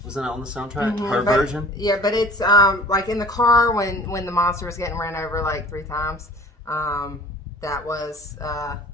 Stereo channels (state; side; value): normal; both; correlation 0.46